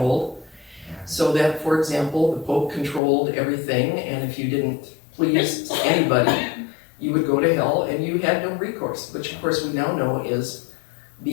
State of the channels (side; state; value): right; drops out; at 3.0 s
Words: So that, for example, the Pope controlled everything, and if you didn't please anybody, you would go to hell, and you had no recourse, which of course we now know is